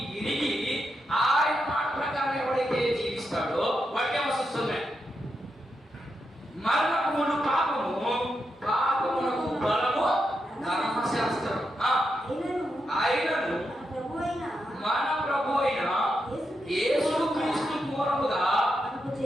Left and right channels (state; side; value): normal; both; correlation 0.85